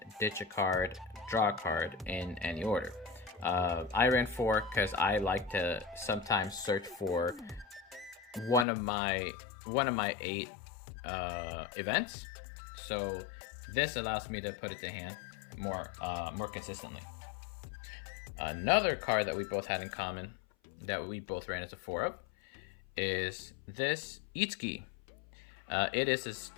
ditch a card, draw a card in any order. I ran 4 because I like to sometimes search for one of my 8 events. So this allows me to put it to hand more consistently. Another card that we both had in common that we both ran as a 4 of is this Itsuki. It is this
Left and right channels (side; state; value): right; drops out; at 8.7 s